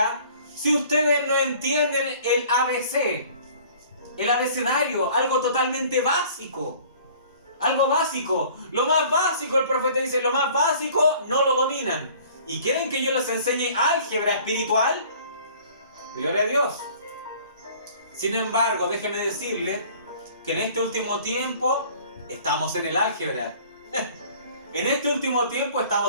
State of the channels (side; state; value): both; inverted; correlation -0.51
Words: si ustedes no entienden el ABC? El abecedario, algo totalmente básico. Algo básico. Lo más básico, el profeta dice, lo más básico no lo dominan. ¿Y quieren que yo les enseñe álgebra espiritual? Gloria a Dios. Sin embargo, déjeme decirle que en este último tiempo estamos en el álgebra. En este último tiempo